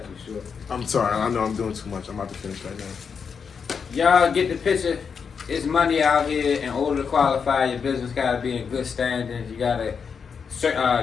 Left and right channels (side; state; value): right; quieter; 6.2 dB